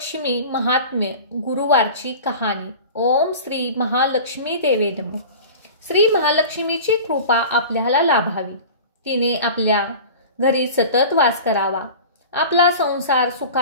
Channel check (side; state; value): both; inverted; correlation -0.37